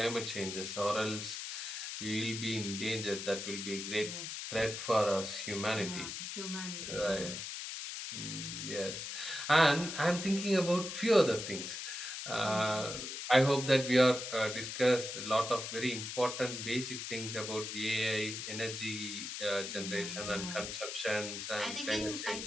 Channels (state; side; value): noise; left; hiss, 6 dB below the sound